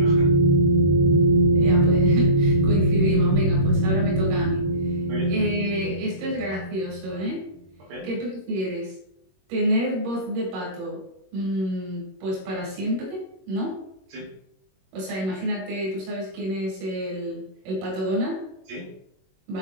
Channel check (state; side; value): late; left; 21 ms